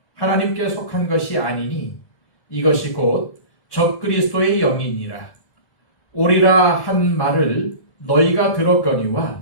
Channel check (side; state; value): right; late; 1.5 ms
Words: 하나님께 속한 것이 아니니 이것이 곧 적그리스도의 영이니라. 오리라 한 말을 너희가 들었거니와